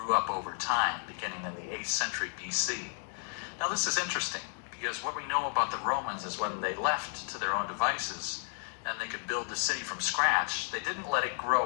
up over time, beginning in the 8th century BC. Now this is interesting, because what we know about the Romans is when they left to their own devices, and they could build the city from scratch, they didn't let it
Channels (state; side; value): silent; right; 56 dB below the other